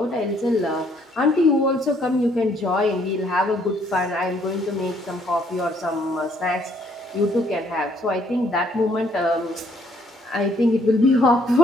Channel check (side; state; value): both; normal; correlation 0.66